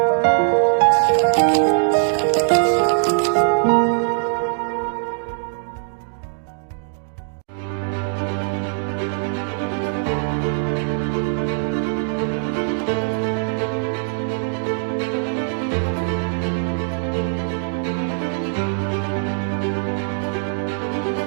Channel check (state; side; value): silent; left; digital silence